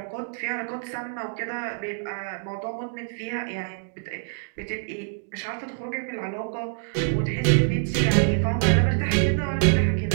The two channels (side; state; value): left; silent; digital silence